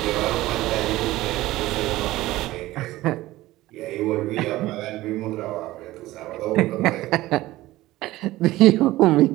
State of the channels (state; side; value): quieter; left; 17.2 dB